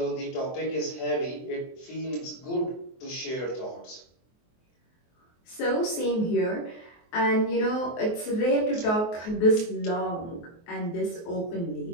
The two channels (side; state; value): right; late; 23 ms